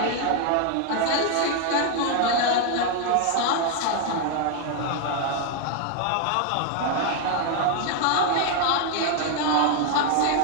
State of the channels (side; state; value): both; different; correlation 0.00